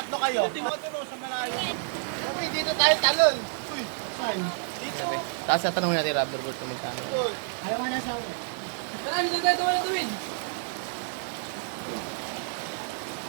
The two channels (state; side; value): silent; left; digital silence